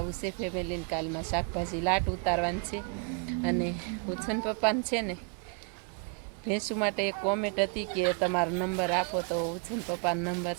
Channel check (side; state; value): left; quieter; 36.5 dB